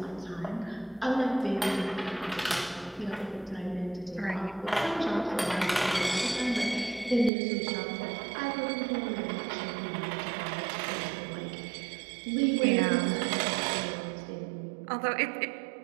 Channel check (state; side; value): drops out; left; at 7.3 s